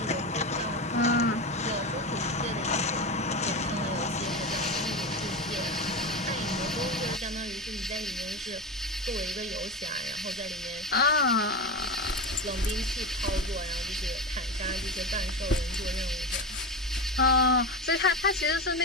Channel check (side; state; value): both; normal; correlation 0.21